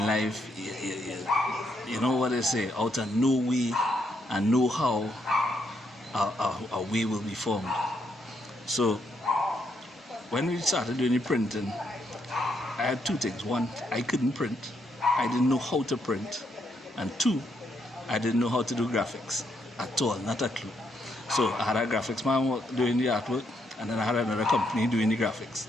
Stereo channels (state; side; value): normal; both; correlation 0.76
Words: life, you know what they say, out of no way and know how a way will be formed. So when we started doing the printing, I had two things. One, I couldn't print. I didn't know how to print. And two, I didn't know how to do graphics at all, not a clue. So I had a graphics man doing the artwork, and then I had another company doing the graphics,